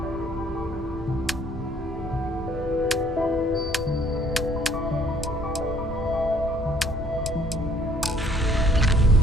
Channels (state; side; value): normal; both; correlation 0.59